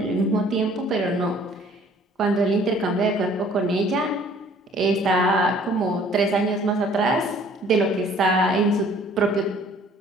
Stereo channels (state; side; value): normal; both; correlation 0.55